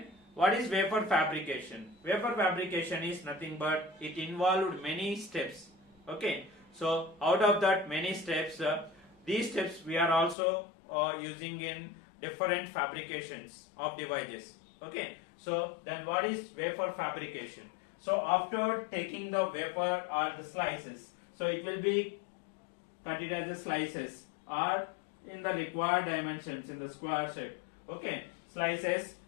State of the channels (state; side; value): drops out; right; at 10.4 s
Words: what is vapor fabrication? Vapor fabrication is nothing but it involved many steps. Okay, so out of that many steps, these steps we are also using in different fabrications of devices. Okay, so then what is vapor fabrication? So after taking the vapor or the slices, so it will be cut it as the slices, or in the required dimensions in the square shape. Okay, slices